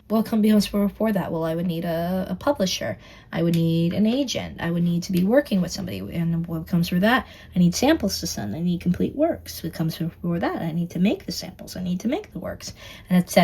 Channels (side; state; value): both; identical; correlation 1.00